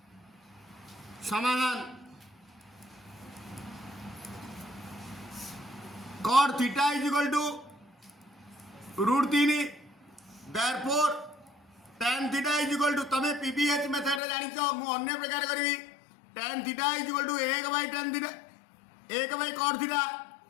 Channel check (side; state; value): right; drops out; at 14.2 s